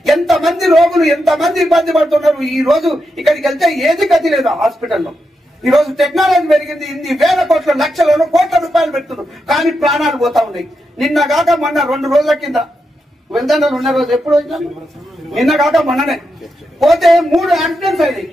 ఎంతమంది రోగులు ఎంతమంది ఇబ్బంది పడుతున్నారు. ఈ రోజు ఇక్కడికి వెళ్తే ఏది గతి లేదు హాస్పిటల్లో. ఈ రోజు టెక్నాలజీ పెరిగింది. ఇన్ని వేల కోట్ల లక్షలను కోట్ల రూపాయలు పెడుతున్నారు, కానీ ప్రాణాలు పోతా ఉన్నాయి. నిన్న కాక మొన్న 2 రోజుల కింద వెళ్తాను ఉన్న రోజు ఎప్పుడు వచ్చినా నిన్న కాక మొన్ననే పోతే 3 యాక్సిడెంట్స్ అయినాయి.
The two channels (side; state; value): both; normal; correlation 0.85